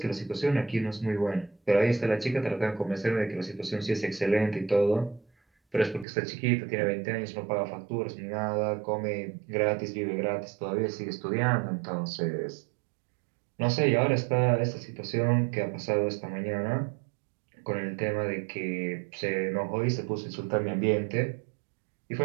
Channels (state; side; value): drops out; left; at 6.1 s